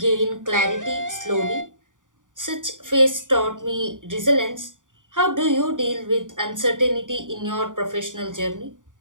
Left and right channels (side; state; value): left; late; 0.88 ms